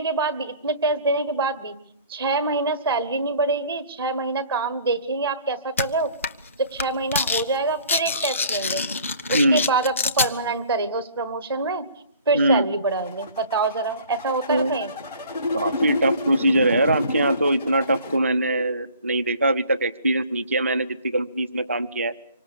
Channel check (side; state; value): both; inverted; correlation -0.52